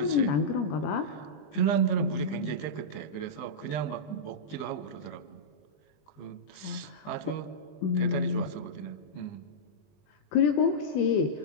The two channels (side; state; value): right; late; 20 ms